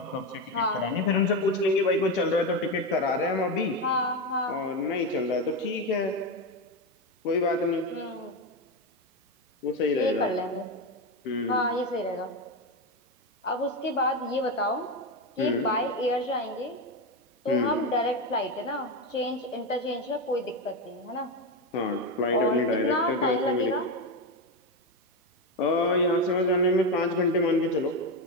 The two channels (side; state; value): both; normal; correlation 0.12